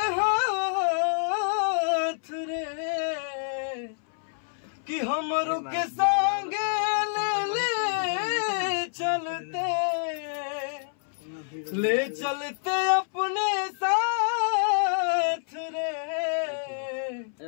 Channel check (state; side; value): silent; right; 60 dB below the other